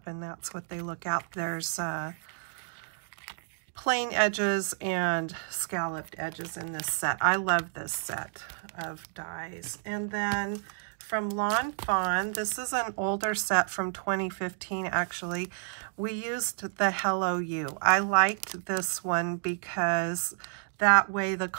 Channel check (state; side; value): silent; left; digital silence